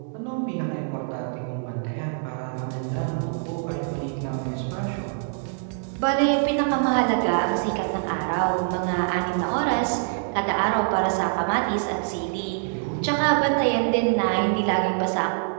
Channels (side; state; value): left; silent; digital silence